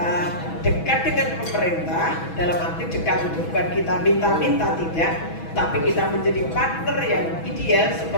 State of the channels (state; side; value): late; right; 6.1 ms